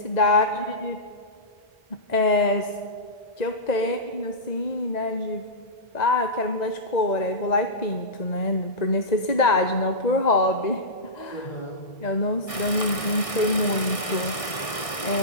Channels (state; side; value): late; right; 1.6 ms